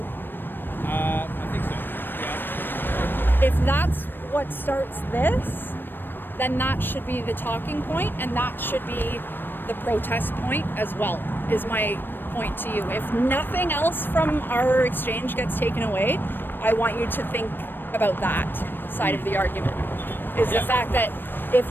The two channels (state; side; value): late; right; 0.095 ms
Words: I think so, yeah. If that's what starts this, then that should be the talking point, and that should be the protest point as well, is my point to you. If nothing else from our exchange gets taken away, I want you to think about that side of the argument, is the fact that if